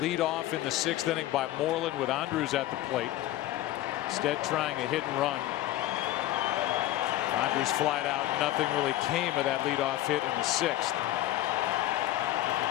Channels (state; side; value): quieter; right; 14.8 dB